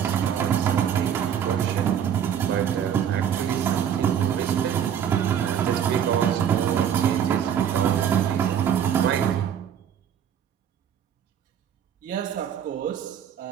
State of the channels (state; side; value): quieter; left; 8.9 dB